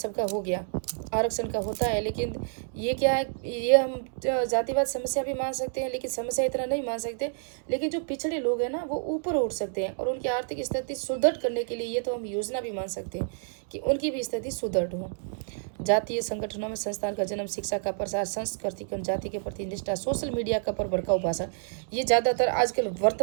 हो गया। आरक्षण का होता है, लेकिन ये क्या है, ये हम जातिवाद समस्या भी मान सकते हैं, लेकिन समस्या इतना नहीं मान सकते। लेकिन जो पिछड़े लोग हैं ना, वो ऊपर उठ सकते हैं, और उनकी आर्थिक स्थिति सुदृढ़ करने के लिए ये तो हम योजना भी मान सकते हैं कि उनकी भी स्थिति सुदृढ़ हो। जातीय संगठनों में संस्थान का जन्म, शिक्षा का प्रसार, संस्कृति और जाति के प्रति निष्ठा, सोशल मीडिया का पर भड़काऊ भाषा, ये ज़्यादातर आजकल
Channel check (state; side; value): silent; left; digital silence